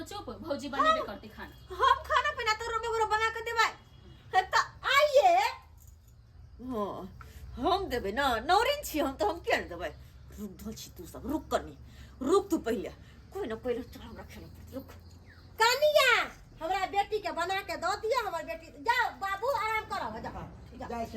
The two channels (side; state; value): both; identical; correlation 1.00